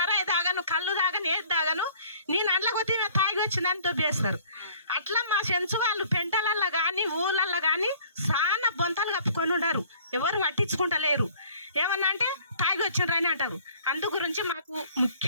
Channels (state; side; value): inverted; both; correlation -0.54